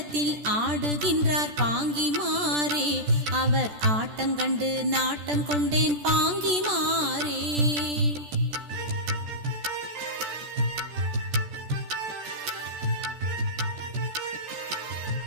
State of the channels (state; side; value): late; left; 14 ms